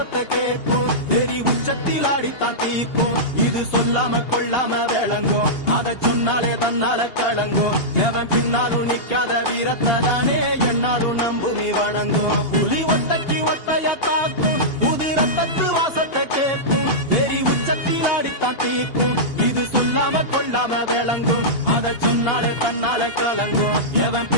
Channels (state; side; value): late; right; 2.8 ms